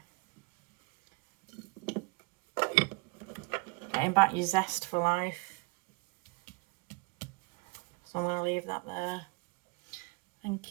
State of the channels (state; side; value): quieter; left; 27.6 dB